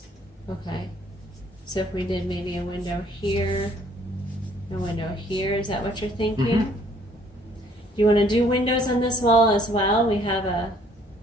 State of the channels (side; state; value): both; normal; correlation 0.61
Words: okay? So if we did maybe a window here, a window here, is that what you're thinking? Mhm. Do you want to do windows on this wall as well? We have I